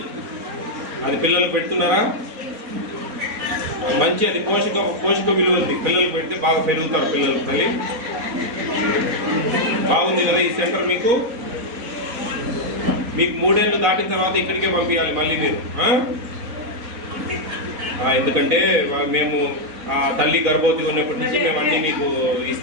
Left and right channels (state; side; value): late; left; 4.0 ms